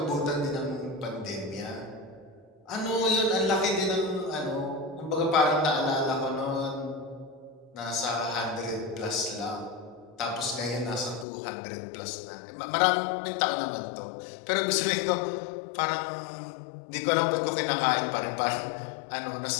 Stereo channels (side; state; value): right; drops out; at 11.2 s